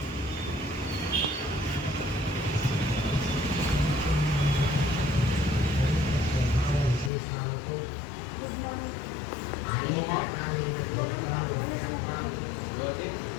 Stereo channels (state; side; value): drops out; right; at 7.1 s